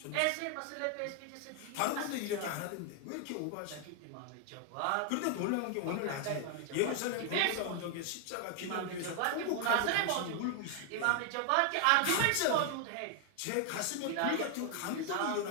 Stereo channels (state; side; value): different; both; correlation 0.00